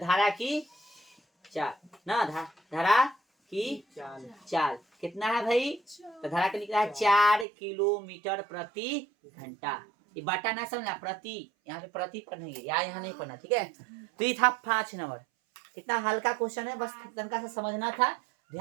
की चाल ना, धारा की चाल कितना है भाई, तो धारा का निकला है 4 किलोमीटर प्रति घंटा। ये बाटा ना समझना, प्रति यहाँ पे प्रति पढ़ेंगे, यहाँ नहीं पढ़ना, ठीक है। तो ये था 5 नंबर। कितना हल्का क्वेश्चन है, बस तनका से समझना था।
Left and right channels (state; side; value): drops out; left; at 7.5 s